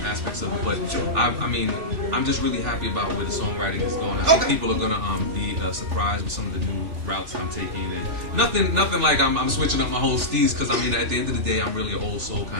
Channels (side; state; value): left; late; 3.4 ms